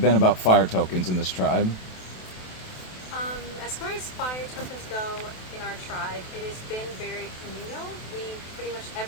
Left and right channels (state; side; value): late; right; 28 ms